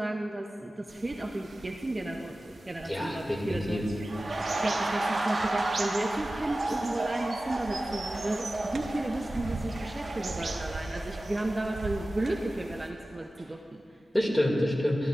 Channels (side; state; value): both; normal; correlation 0.95